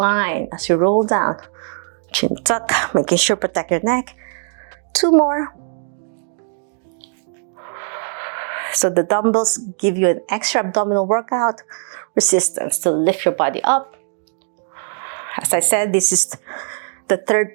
as you roll down. Chin tuck, making sure protect your neck. 2 more. So the dumbbells give you an extra abdominal workout, resistance to lift your body up. As I said, this is the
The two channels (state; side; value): silent; left; digital silence